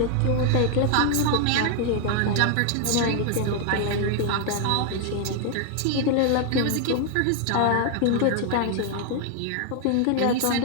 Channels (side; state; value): both; different; correlation 0.00